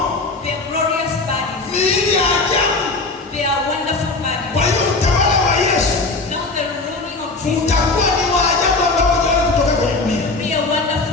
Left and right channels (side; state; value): right; quieter; 3.5 dB